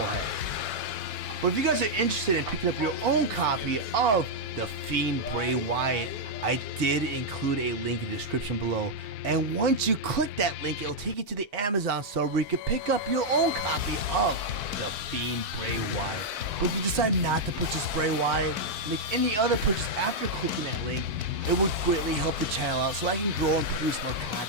head. But if you guys are interested in picking up your own copy of the Fiend Bray Wyatt, I did include a link in the description below. And once you click that link, it'll take you to the Amazon store where you can pick up your own copy of the Fiend Bray Wyatt. But if you decide not to purchase Bray Wyatt, make any other purchase after clicking that link, it would greatly help the channel out so I can grow and produce more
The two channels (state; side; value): late; left; 4.5 ms